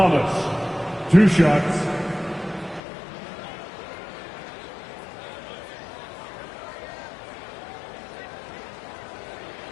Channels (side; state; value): right; drops out; at 2.8 s